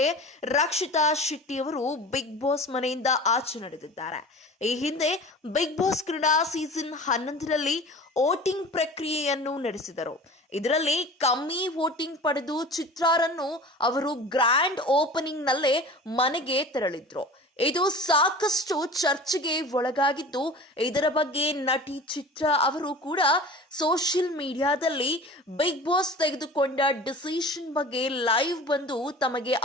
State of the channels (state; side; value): normal; both; correlation 0.39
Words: ರಕ್ಷಿತಾ ಶೆಟ್ಟಿ ಅವರು ಬಿಗ್ ಬಾಸ್ ಮನೆಯಿಂದ ಆಚೆ ನಡೆದಿದ್ದಾರೆ. ಈ ಹಿಂದೆ ಬಿಗ್ ಬಾಸ್ ಕನ್ನಡ ಸೀಸನ್ 11ರಲ್ಲಿ ವೋಟಿಂಗ್ ಪ್ರಕ್ರಿಯೆಯನ್ನು ನಡೆಸಿದರು. ಇದರಲ್ಲಿ ಕಮ್ಮಿ ವೋಟಿಂಗ್ ಪಡೆದು ಚಿತ್ರಾರನ್ನು ಅವರು ಗ್ರ್ಯಾಂಡ್ ಓಪನಿಂಗ್ ನಲ್ಲೇ ಮನೆಗೆ ತೆರಳಿದ್ರು. ಇದು ಸಾಕಷ್ಟು ಚರ್ಚೆಗೆ ಒಳಗಾಗಿದ್ದು, ಇದರ ಬಗ್ಗೆ ನಟಿ ಚಿತ್ರ ಅವರು ಕೂಡ ಸೋಷಿಯಲ್ ಮೀಡಿಯಾದಲ್ಲಿ ಬಿಗ್ ಬಾಸ್ ತೆಗೆದುಕೊಂಡ ಡಿಸಿಷನ್ ಬಗ್ಗೆ ಲೈವ್ ಬಂದು ತಮಗೆ